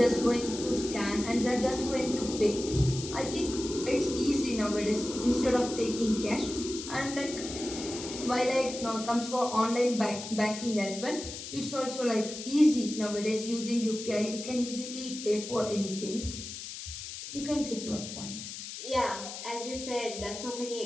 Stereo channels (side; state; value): left; noise; hiss, 9 dB below the sound